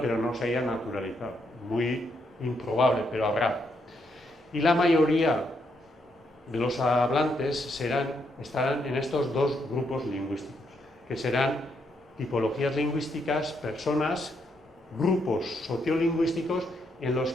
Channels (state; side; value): normal; both; correlation 0.77